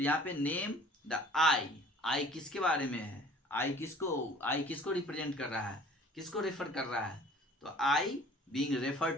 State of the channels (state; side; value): normal; both; correlation 0.50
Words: यहाँ पे नेम द आई, आई किसके बारे में है, आई किसको रिप्रेजेंट कर रहा है, किसको रेफर कर रहा है, तो I being refer